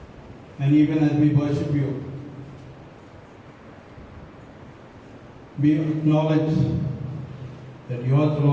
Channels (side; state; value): both; identical; correlation 1.00